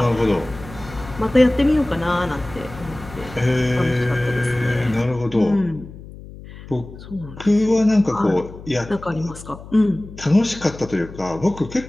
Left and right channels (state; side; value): noise; left; hum, 16 dB below the sound